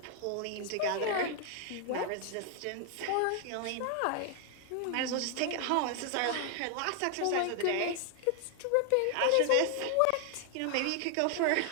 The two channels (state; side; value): different; both; correlation 0.00